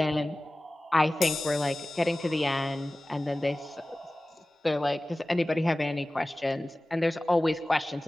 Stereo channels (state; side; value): normal; both; correlation 0.97